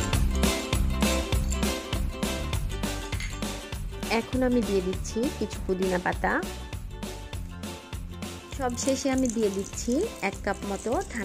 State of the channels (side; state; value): both; identical; correlation 1.00